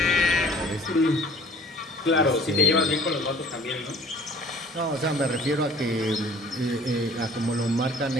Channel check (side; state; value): both; normal; correlation 0.50